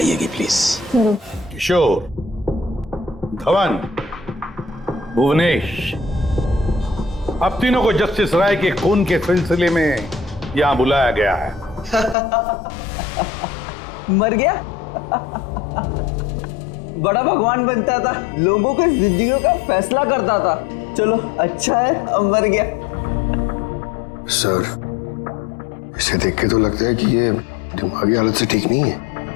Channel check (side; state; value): right; drops out; at 12.2 s